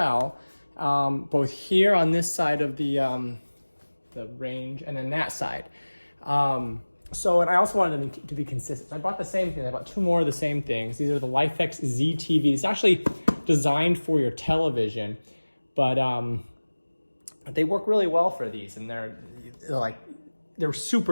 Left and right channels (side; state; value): both; inverted; correlation -1.00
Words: both here on this side of the range and then that side. And I also wanted them to be consistent. So I bought the same thing. I bought two more of the same things. These are the Lifx ZTV. It's actually designed for your television, but they work really well for these, and they're